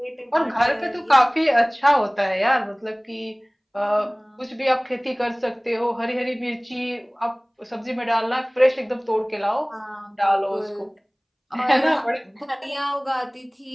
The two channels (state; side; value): identical; both; correlation 1.00